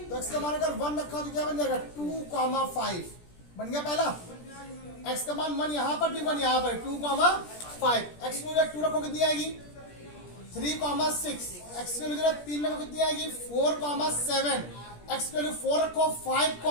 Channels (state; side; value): late; right; 17 ms